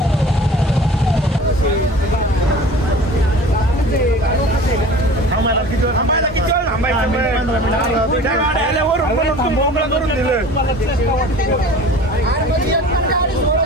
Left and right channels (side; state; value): both; normal; correlation 0.41